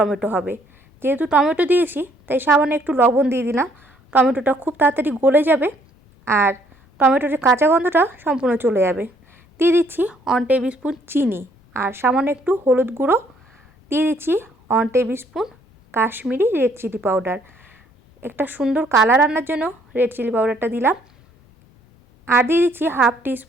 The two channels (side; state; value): both; normal; correlation 0.65